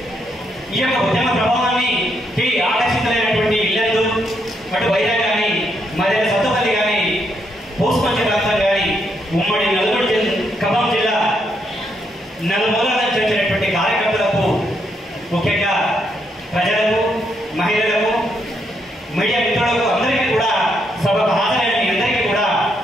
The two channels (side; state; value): both; normal; correlation 0.77